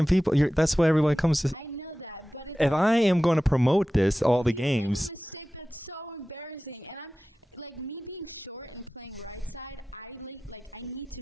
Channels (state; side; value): normal; both; correlation 0.95